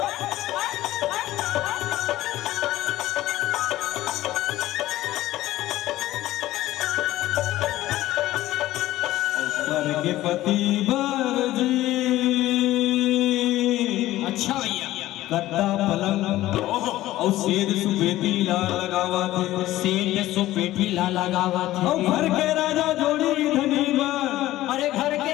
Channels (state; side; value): quieter; right; 15.5 dB